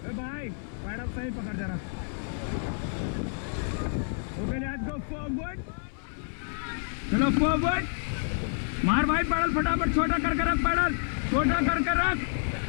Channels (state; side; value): silent; right; 59 dB below the other